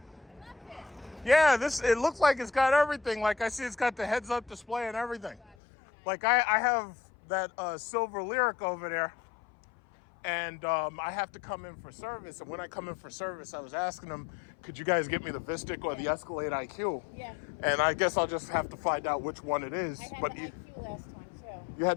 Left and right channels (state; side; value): drops out; right; at 5.6 s